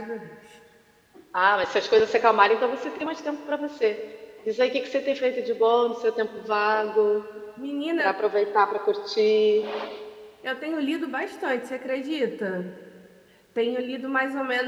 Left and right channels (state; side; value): identical; both; correlation 1.00